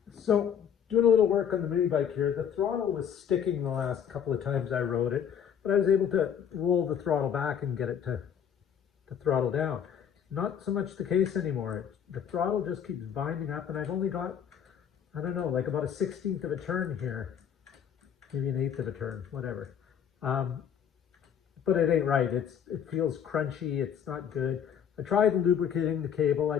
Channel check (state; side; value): quieter; right; 8.4 dB